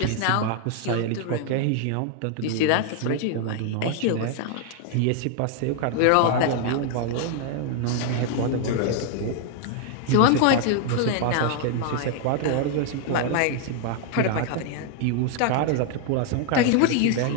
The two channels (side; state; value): both; different; correlation 0.00